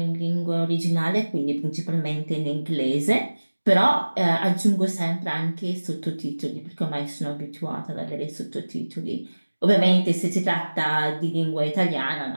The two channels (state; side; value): inverted; both; correlation -1.00